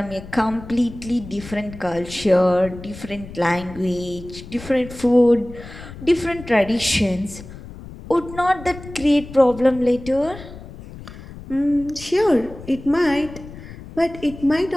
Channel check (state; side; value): noise; left; rumble, 15 dB below the sound